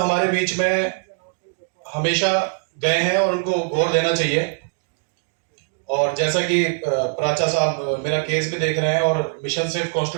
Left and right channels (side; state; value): left; silent; digital silence